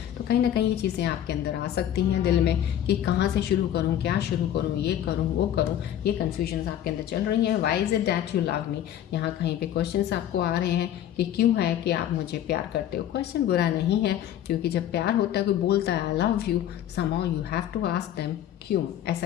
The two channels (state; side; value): quieter; right; 11.1 dB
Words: तो कहीं ना कहीं ये चीज़ें आपके अंदर आ सकती हैं दिल में कि कहाँ से शुरू करूँ, क्या शुरू करूँ, ये करूँ वो करूँ। ये कन्फ्यूजन्स आपके अंदर चल रही हैं। Why is it that you love me. यहाँ कहीं पे क्वेश्चंस आपको आ रहे हैं कि क्यों है कि आप मुझे प्यार करते हो। क्वेश्चन बुरा नहीं है, क्योंकि जब प्यार होता है, कोई बोलता है I love you, somehow you have to ask them क्यों,